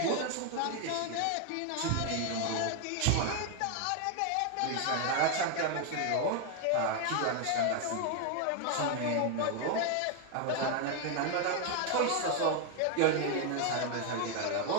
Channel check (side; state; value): both; different; correlation 0.01